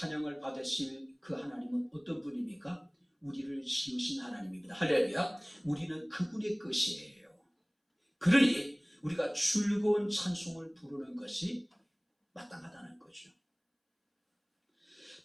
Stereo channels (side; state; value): both; identical; correlation 1.00